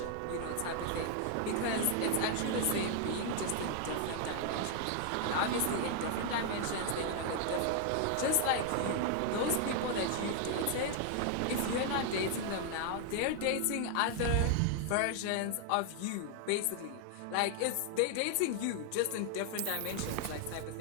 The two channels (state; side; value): different; both; correlation 0.00